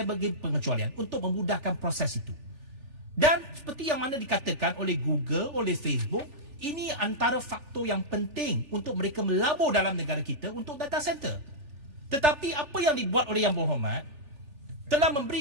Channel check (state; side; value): late; left; 3.4 ms